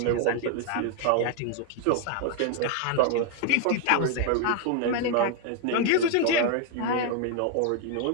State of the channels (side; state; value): both; different; correlation 0.00